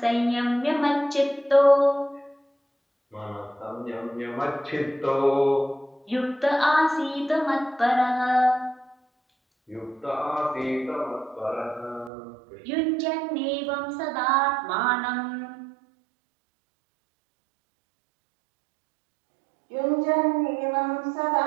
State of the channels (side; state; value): left; drops out; at 12.1 s